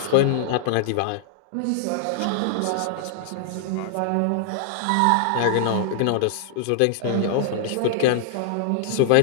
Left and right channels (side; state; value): both; different; correlation -0.01